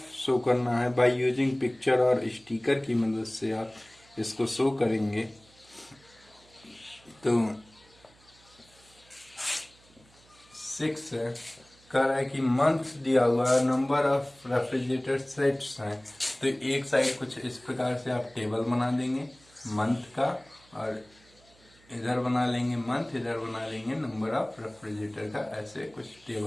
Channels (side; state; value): right; noise; hum, 29 dB below the sound